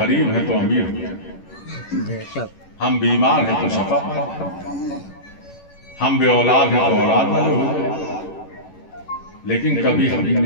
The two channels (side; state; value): right; late; 11 ms